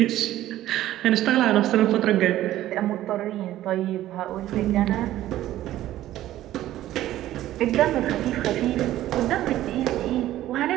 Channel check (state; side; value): quieter; left; 14.0 dB